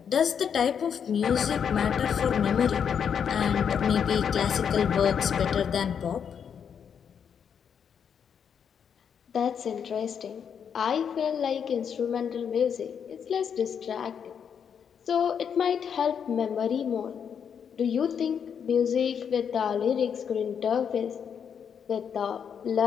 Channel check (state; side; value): quieter; right; 7.5 dB